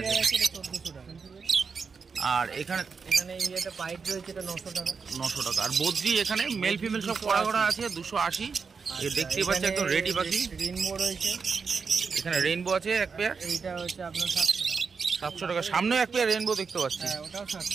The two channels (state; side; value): quieter; left; 5.4 dB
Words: এটা 1400 টাকা। আর এখানে এই একটা পাইপ রয়েছে, এটা 900 টাকা। 900 টাকা। আর বদ্রি এখানে মেল ফিমেল সব করা করা আছে 280। এ দেখতেই পাচ্ছি একদম রেডি পাখি। রেইনবো রয়েছে, এখানে রেইনবো আছে এক পেয়ার, এইটা হচ্ছে আপনার 700 টাকা। 700 টাকা। সামনেও এক পেয়ার রেইনবো দেখতে পাচ্ছি, হ্যাঁ ওটাও